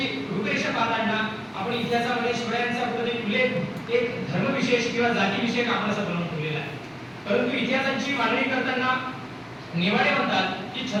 रूपरेषा पाहताना आपण इतिहासामध्ये शिवरायांचा कुठेतरी उल्लेख एक धर्मविशेष किंवा जातीविषयक आपण असं बनवून ठेवलेला आहे. परंतु इतिहासाची मांडणी करताना नेवाडे म्हणतात की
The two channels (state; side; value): identical; both; correlation 1.00